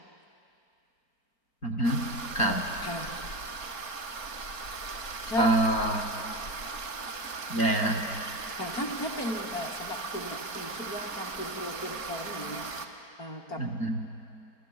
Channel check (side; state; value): right; late; 4.4 ms